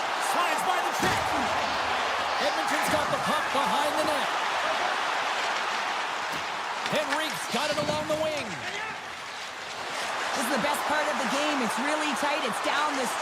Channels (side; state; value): both; identical; correlation 1.00